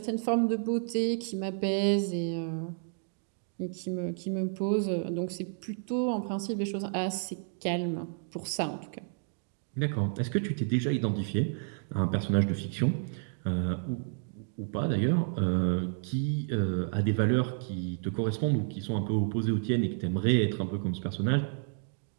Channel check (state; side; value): silent; left; digital silence